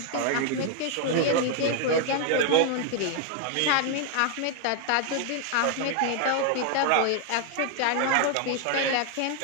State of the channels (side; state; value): both; different; correlation 0.00